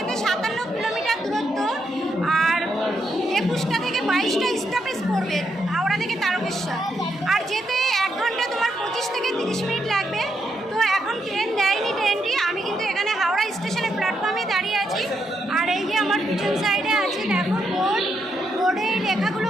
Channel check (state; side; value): normal; both; correlation 0.80